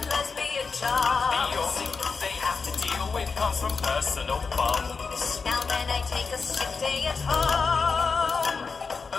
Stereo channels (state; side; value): quieter; right; 4.9 dB